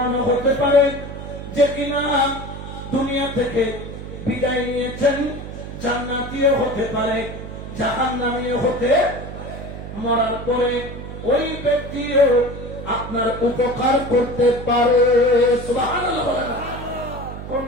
হতে পারে, যে কিনা দুনিয়া থেকে বিদায় নিয়েছেন, জান্নাতীয় হতে পারে, জাহান্নামীয় হতে, মরার পরে ওই ব্যক্তিও আপনার উপকার করতে পারে। সুবহানাল্লাহ বলেন। কোন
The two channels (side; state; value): right; noise; hum, 10 dB below the sound